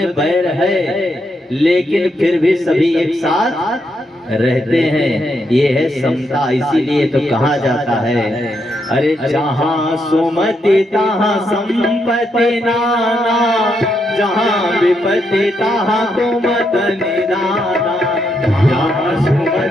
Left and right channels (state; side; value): normal; both; correlation 0.79